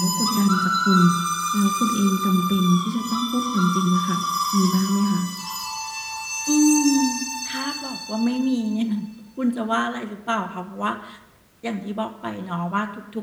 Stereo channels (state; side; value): identical; both; correlation 1.00